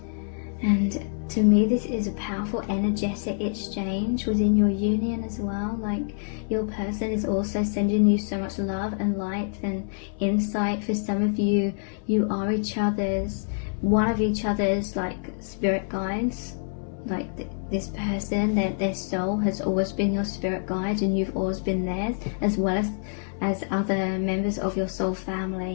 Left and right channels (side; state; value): right; silent; 61 dB below the other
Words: to me, this is a powerful energetic exchange within your union as well. Like, your person is also sending you so much love and light and insight. For some of you, you are one of each other's like spirit guides. Like this person, their soul has always been your spirit guide, and you've always been theirs, as well as other members of your soul